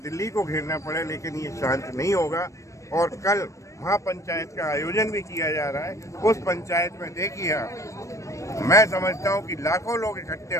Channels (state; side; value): late; right; 0.15 ms